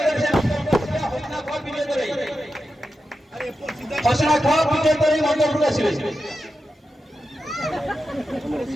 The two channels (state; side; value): normal; both; correlation 0.90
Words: हसीना ख विजय तराई हसीना ख विजय तराई मंच पर आसीबे